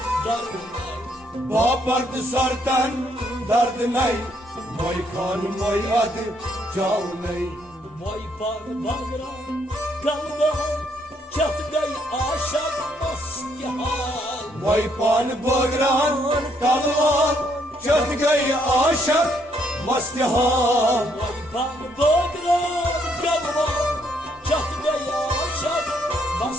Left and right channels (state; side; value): normal; both; correlation 0.71